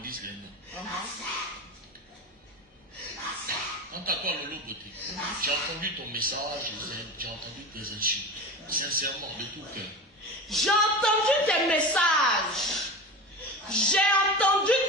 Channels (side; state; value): both; normal; correlation 0.29